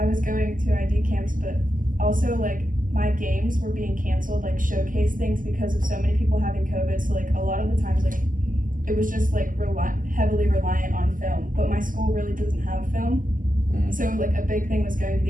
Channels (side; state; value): left; late; 0.39 ms